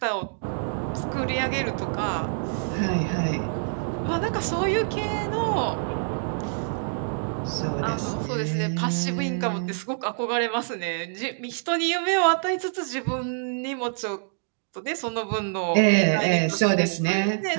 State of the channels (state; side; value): silent; left; digital silence